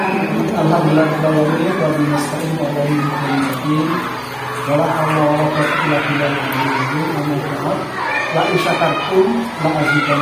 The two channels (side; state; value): both; identical; correlation 1.00